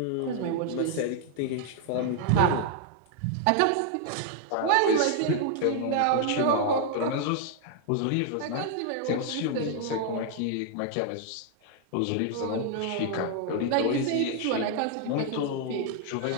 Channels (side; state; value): both; different; correlation 0.00